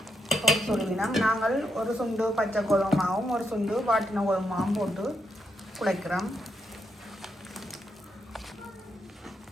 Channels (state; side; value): normal; both; correlation 0.81